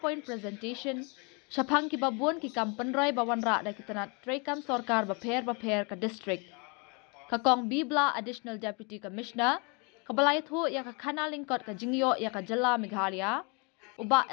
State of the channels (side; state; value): right; quieter; 32.7 dB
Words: presentation Syapang ki babuan ki kampen roy bawan ra da kitanat trekam sorkar baper ka district. Kakong Bibla Additional Deputy Commissioner, kabalayat ho ya ka kanalingkot ka jingioh ya ka Jylla Meghalaya, uba